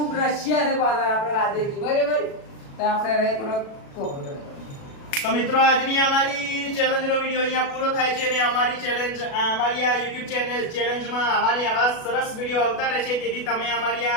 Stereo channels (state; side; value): late; right; 37 ms